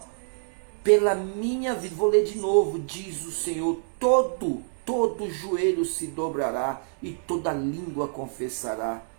pela minha vida, vou ler de novo, diz o Senhor, todo joelho se dobrará e toda língua confessará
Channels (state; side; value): silent; left; digital silence